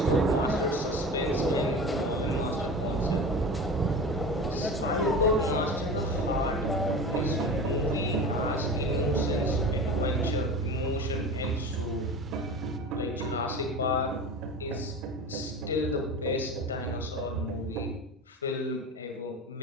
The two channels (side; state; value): both; normal; correlation 0.32